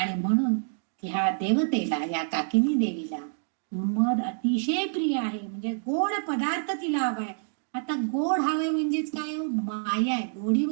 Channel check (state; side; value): silent; left; digital silence